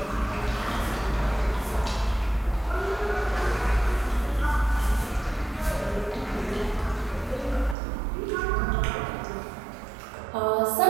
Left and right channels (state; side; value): drops out; left; at 7.8 s